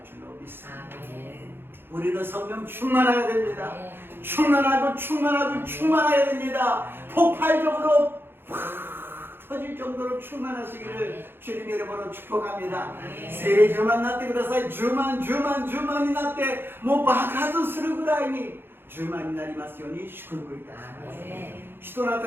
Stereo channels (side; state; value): left; late; 0.10 ms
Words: 줄로 믿습니다. 우리는 성령 충만해야 됩니다. 충만해야 됩니다. 폭발적으로 터질 정도로 충만하시기를 주님의 이름으로 축복합니다. 세례 주만なってください. 주만になってもう爆発するぐらいに주만になりますように祝福いたします. 使徒の